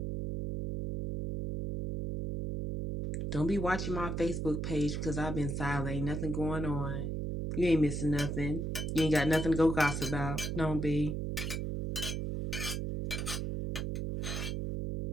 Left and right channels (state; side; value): noise; right; hum, 2 dB below the sound